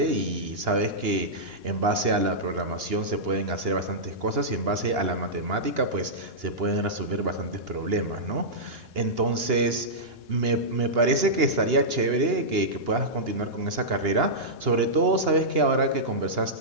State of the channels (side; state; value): left; late; 2.9 ms